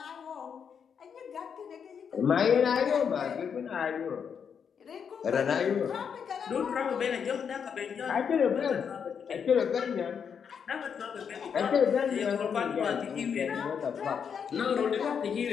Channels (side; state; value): right; quieter; 7.1 dB